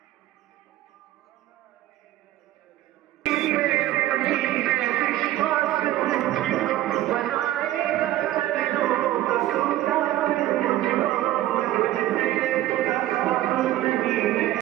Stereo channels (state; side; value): quieter; left; 14.4 dB